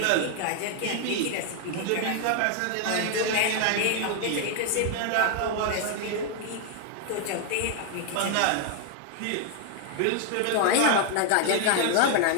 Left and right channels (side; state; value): both; different; correlation 0.00